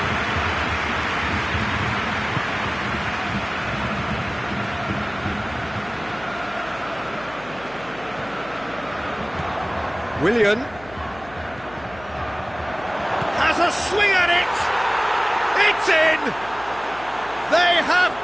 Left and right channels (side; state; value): left; noise; hum, 20 dB below the sound